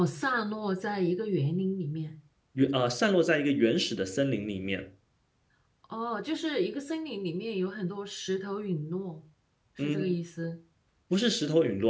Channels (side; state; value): both; identical; correlation 1.00